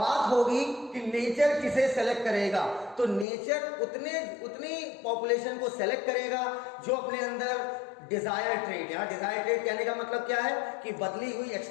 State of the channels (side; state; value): right; drops out; at 3.2 s